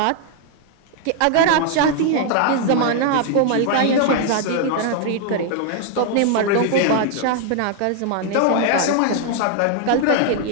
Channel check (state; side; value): different; both; correlation 0.00